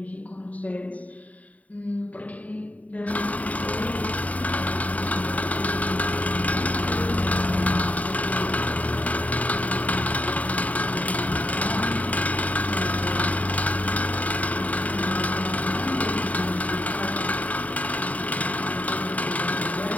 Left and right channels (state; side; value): late; right; 0.071 ms